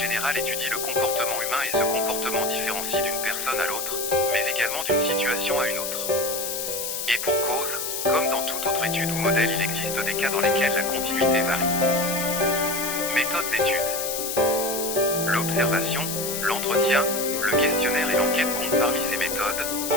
générale étudie le comportement humain et ce comportement différencie d'une personne à l'autre, mais également d'une situation à une autre. Et pour cause, comme dans toute autre étude ou modèle, il existe des cas dans lesquels la continuité varie. Méthode d'étude. L'observation, l'entretien, le questionnaire et l'enquête comptent parmi ces méthodes,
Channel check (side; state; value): left; noise; hiss, 3 dB below the sound